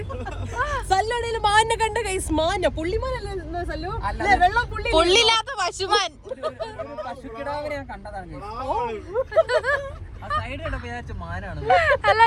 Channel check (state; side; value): identical; both; correlation 1.00